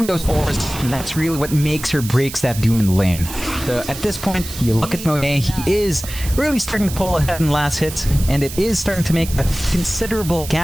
those auras, and that's really what makes or breaks that Doom in the lane. So at this point, you look at Monet, he is really starting to pull ahead in last hits, and it is starting to make a considerable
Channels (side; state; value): right; noise; hiss, 11 dB below the sound